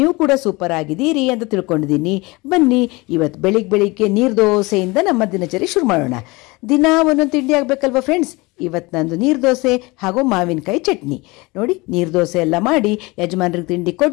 ಕೂಡ ಸೂಪರ್ ಆಗಿದ್ದೀರಿ ಅಂತ ತಿಳ್ಕೊಂಡಿದ್ದೀನಿ. ಬನ್ನಿ ಇವತ್ತು ಬೆಳಿಗ್ಗೆ ನೀರು ದೋಸೆಯಿಂದ ನಮ್ಮ ದಿನಚರಿ ಶುರು ಮಾಡೋಣ. ದಿನ ಒಂದೊಂದು ತಿಂಡಿ ಆಗಬೇಕಲ್ವ ಫ್ರೆಂಡ್ಸ್. ಇವತ್ತು ನಂದು ನೀರು ದೋಸೆ ಹಾಗೂ ಮಾವಿನಕಾಯಿ ಚಟ್ನಿ. ನೋಡಿ, ನೀರು ದೋಸೆ ಎಲ್ಲ ಮಾಡಿ ಯಜಮಾನ್ರಿಗೆ ತಿಂಡಿ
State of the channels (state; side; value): quieter; right; 23.9 dB